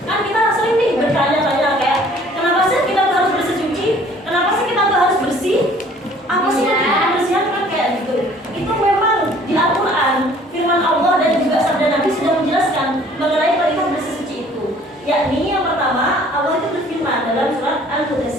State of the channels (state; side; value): normal; both; correlation 0.55